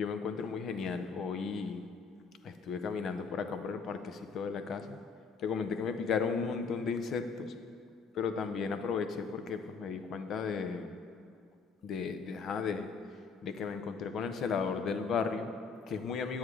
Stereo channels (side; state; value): right; quieter; 5.2 dB